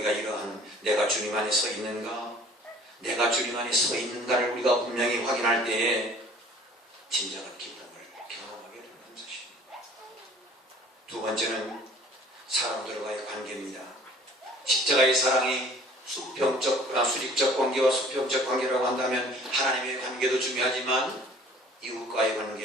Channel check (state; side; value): normal; both; correlation 0.51